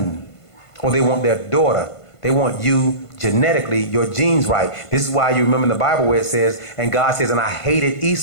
or they want their daughter. They want you genetically, your genes right. This is why you remember in the Bible where it says, and God says, and I hated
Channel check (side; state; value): right; late; 1.5 ms